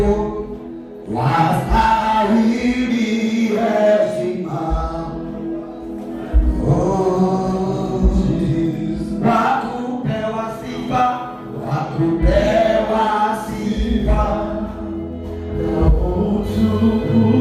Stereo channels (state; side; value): identical; both; correlation 1.00